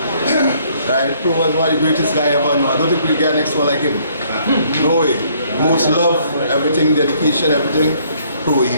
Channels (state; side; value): inverted; both; correlation -0.64